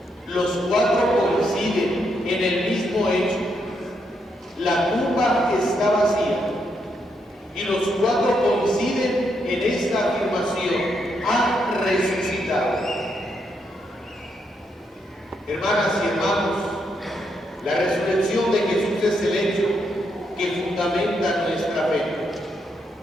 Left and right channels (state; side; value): normal; both; correlation 0.78